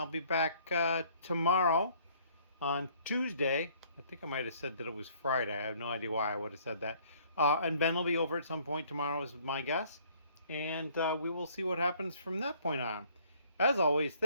be back tomorrow on Tuesday. I think I might have said that it was Friday. I have no idea why I would have said that. And Ben will be over at some point tomorrow, is my guess. And we will see what happens from that point on. As always,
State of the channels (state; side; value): inverted; both; correlation -0.59